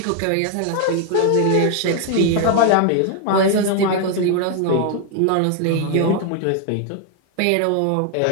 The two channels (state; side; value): different; both; correlation 0.00